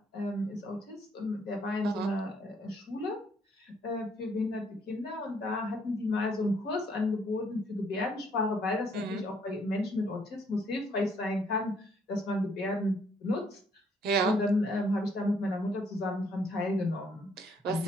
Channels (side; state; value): both; normal; correlation 0.67